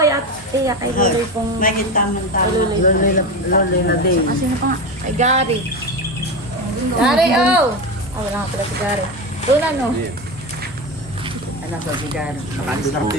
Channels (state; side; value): normal; both; correlation 0.20